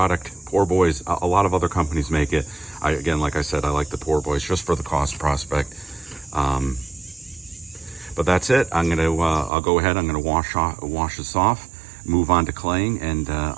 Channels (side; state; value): left; drops out; at 9.5 s